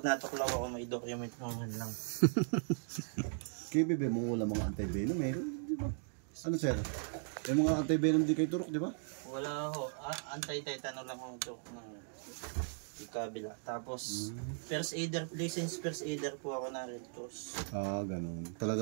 natuklaw ako, may document mo man lang. Kaya bebe mo wala mga anti-venom meron, di ba? Ano sir? Yung mga anti-venom di kayo turok, di ba? Wala ho. Anti-tetano lang ho ito ng ikabila. Tapos, first aider, licensed first aider po ako na Red Cross. Ganun.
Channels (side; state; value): left; silent; digital silence